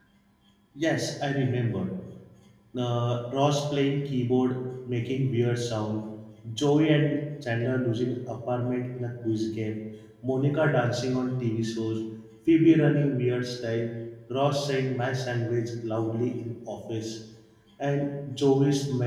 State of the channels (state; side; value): identical; both; correlation 1.00